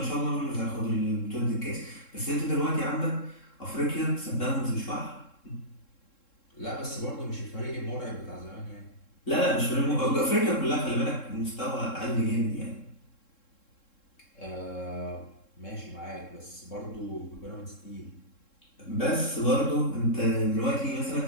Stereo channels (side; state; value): right; late; 3.7 ms